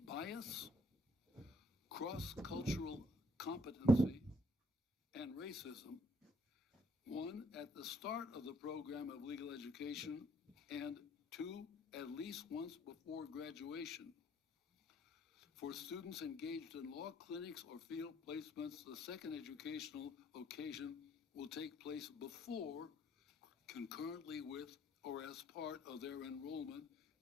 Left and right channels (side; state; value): both; normal; correlation 0.65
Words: bias, cross-cultural competency, and racism. One, at the start of the program of legal education, and two, at least once before graduation. For students engaged in law clinics or field placements, the second educational occasion will take place before, concurrently with, or as part of their enrollment